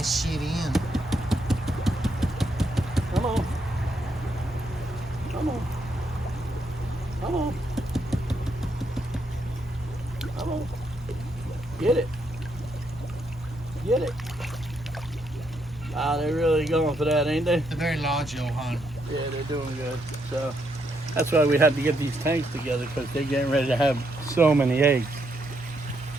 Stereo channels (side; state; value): both; normal; correlation 0.77